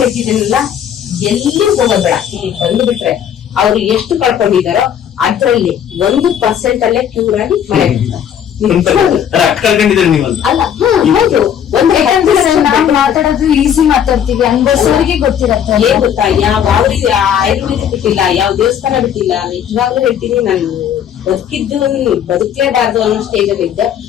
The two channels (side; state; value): right; quieter; 9.1 dB